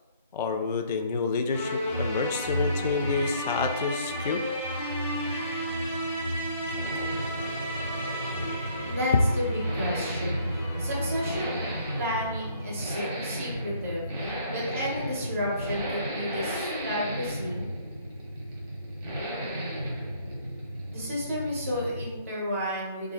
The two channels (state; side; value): inverted; both; correlation -0.61